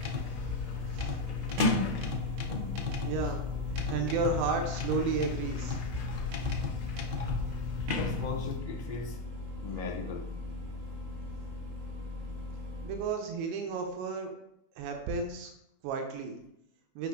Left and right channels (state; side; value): late; left; 22 ms